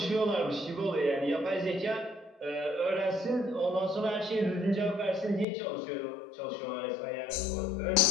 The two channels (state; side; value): drops out; right; at 5.5 s